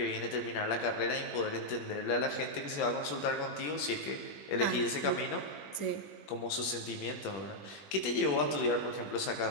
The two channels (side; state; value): right; late; 21 ms